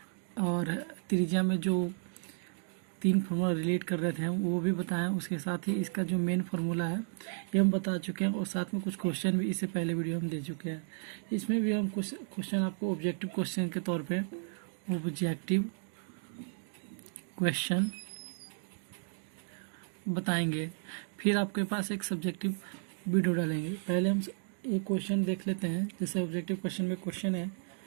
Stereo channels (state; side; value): silent; left; digital silence